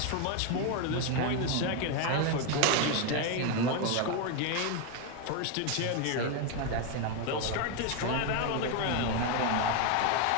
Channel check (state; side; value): different; both; correlation 0.02